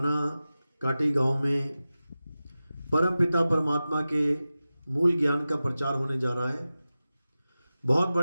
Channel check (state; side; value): inverted; both; correlation -0.95